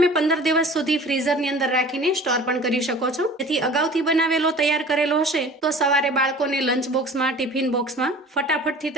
15 દિવસ સુધી ફ્રીઝરની અંદર રાખીને સ્ટોર પણ કરી શકો છો, જેથી અગાઉથી બનાવેલો તૈયાર કરેલો હશે તો સવારે બાળકોને લંચ બોક્સમાં, ટિફિન બોક્સમાં ફટાફટથી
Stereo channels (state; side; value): normal; both; correlation 0.44